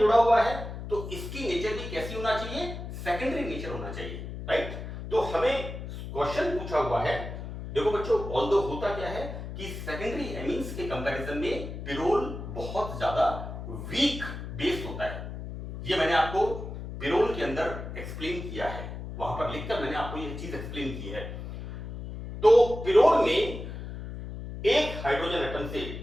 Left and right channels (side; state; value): left; noise; hum, 8 dB below the sound